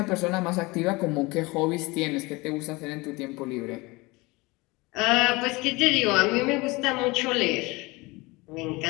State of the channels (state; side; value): quieter; right; 23.7 dB